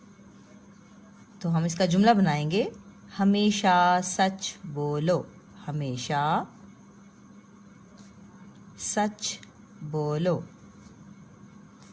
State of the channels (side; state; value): both; identical; correlation 1.00